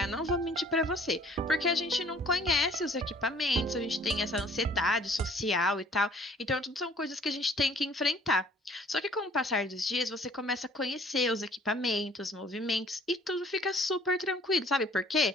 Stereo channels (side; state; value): both; normal; correlation 0.55